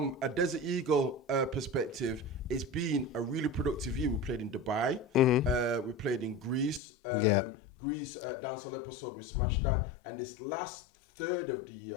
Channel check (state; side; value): drops out; right; at 6.8 s